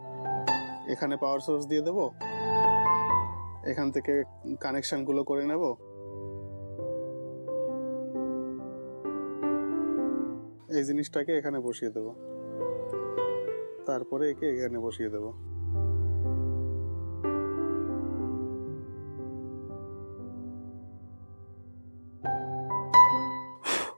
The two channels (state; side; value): inverted; both; correlation -1.00